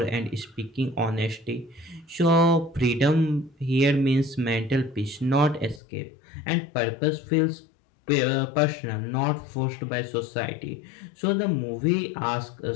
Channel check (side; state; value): right; drops out; at 5.8 s